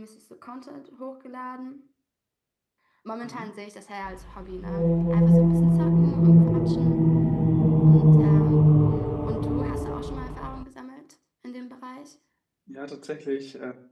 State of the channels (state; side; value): identical; both; correlation 1.00